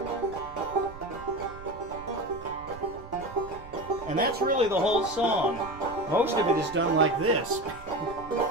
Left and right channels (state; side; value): noise; right; rumble, 17 dB below the sound